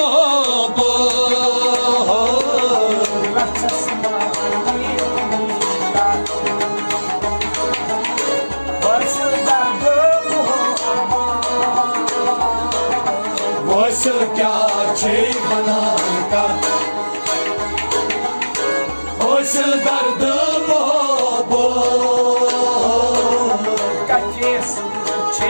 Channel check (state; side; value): inverted; both; correlation -1.00